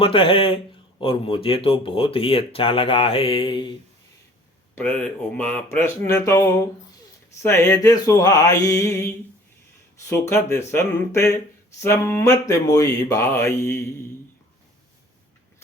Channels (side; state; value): both; normal; correlation 0.51